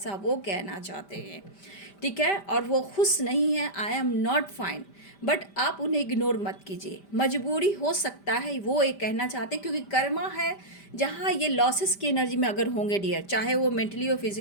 वो कहना चाहते हैं। ठीक है, और वो खुश नहीं है, आई एम नॉट फाइन। बट आप उन्हें इग्नोर मत कीजिए, मजबूरी हो सकता है वो ये कहना चाहते हैं, क्योंकि कर्मा है जहाँ ये लॉसेस की एनर्जी में अगर होंगे डियर, चाहे वो मेंटली हो,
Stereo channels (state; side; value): late; right; 5.1 ms